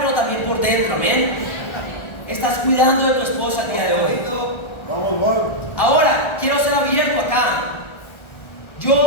pero también por dentro, ¿amén? Estás cuidando de tu esposa el día de hoy. Ahora, quiero ser abierto acá.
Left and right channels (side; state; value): right; late; 1.4 ms